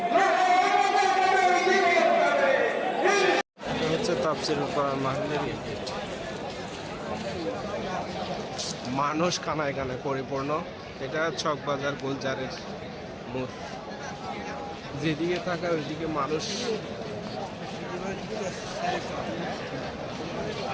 তাফসীরুল কোরআন মাহফিলের মানুষ কানায় কানায় পরিপূর্ণ। এটা চকবাজার গোলজারের মোড়, যেদিকে থাকা ওইদিকে মানুষ।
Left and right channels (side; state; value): both; identical; correlation 1.00